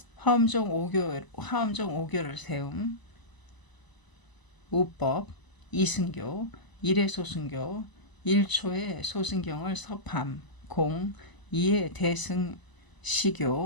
화엄종 오교를 세움 우법 이승교 일회소승교 1초의 소승경을 섭함 공 2의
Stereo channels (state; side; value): late; right; 1.0 ms